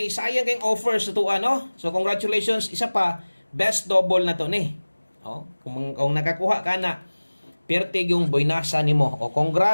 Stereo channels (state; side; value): inverted; both; correlation -1.00